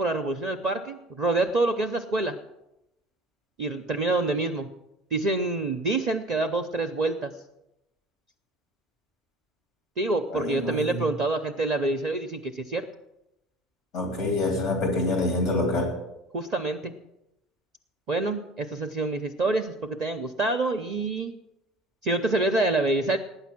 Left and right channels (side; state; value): both; normal; correlation 0.43